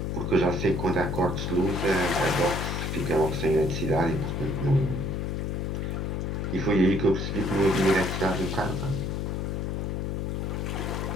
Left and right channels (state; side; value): noise; left; hum, 1 dB below the sound